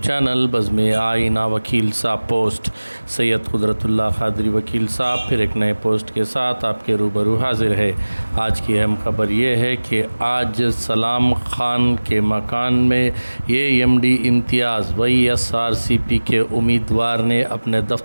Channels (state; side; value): inverted; both; correlation -1.00